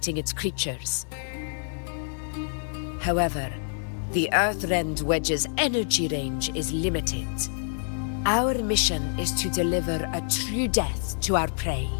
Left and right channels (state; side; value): silent; right; 60 dB below the other